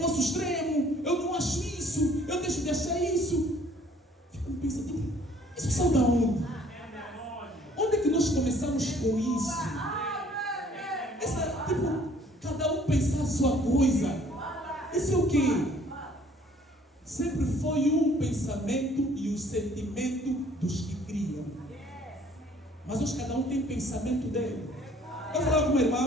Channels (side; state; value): both; normal; correlation 0.58